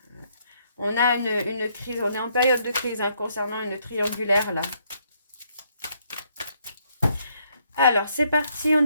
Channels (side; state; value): both; inverted; correlation -0.71